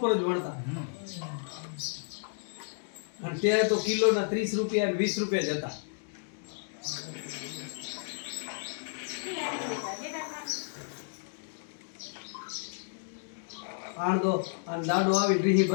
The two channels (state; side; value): silent; right; digital silence